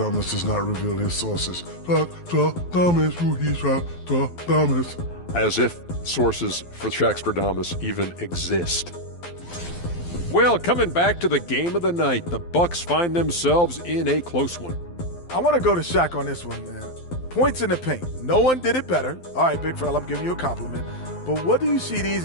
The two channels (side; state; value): right; late; 12 ms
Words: does not reveal his sources. Shaqsperdamus, hoo he sa Shaqsperdamus. As if sources for Shaqsperdamus even exist. Well, coming back to the game of the night, the Bucks find themselves in a close one. I want to go to Shaq on this one, man. Points in the paint. No one did it better. All right, big fella, I'm giving you a compliment. But what do you see these